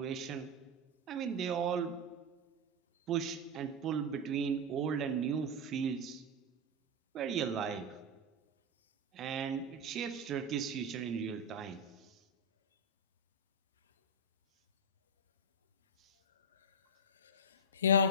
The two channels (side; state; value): both; normal; correlation 0.04